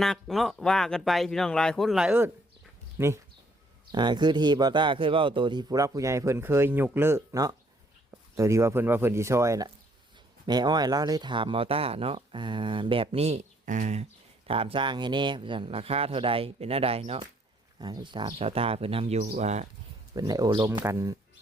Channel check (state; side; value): normal; both; correlation 0.66